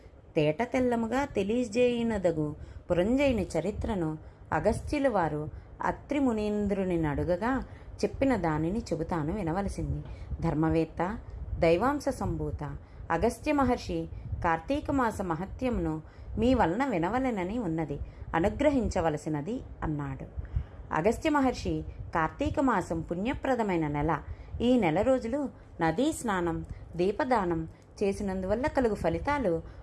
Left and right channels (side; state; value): both; identical; correlation 1.00